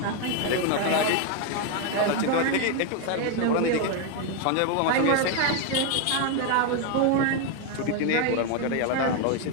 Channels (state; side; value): different; both; correlation 0.01